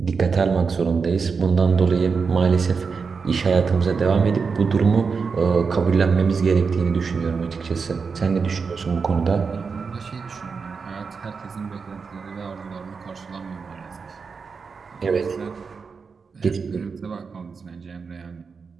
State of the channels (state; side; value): quieter; left; 5.2 dB